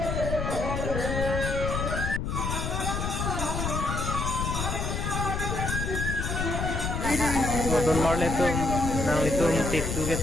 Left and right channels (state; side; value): noise; left; rumble, 1 dB below the sound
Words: Don Marlin tu nang litung titu